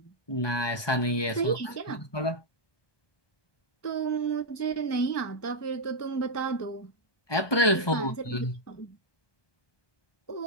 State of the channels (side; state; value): right; late; 1.2 ms